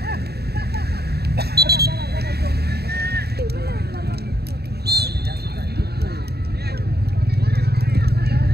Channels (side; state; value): left; late; 0.47 ms